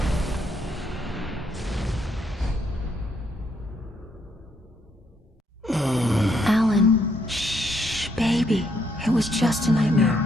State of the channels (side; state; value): both; normal; correlation 0.73